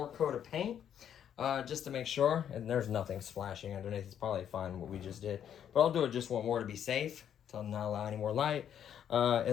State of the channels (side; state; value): right; quieter; 9.4 dB